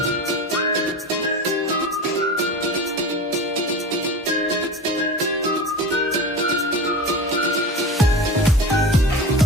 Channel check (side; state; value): both; normal; correlation 0.30